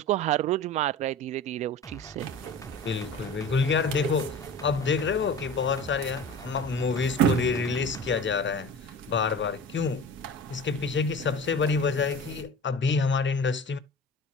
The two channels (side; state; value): both; normal; correlation 0.36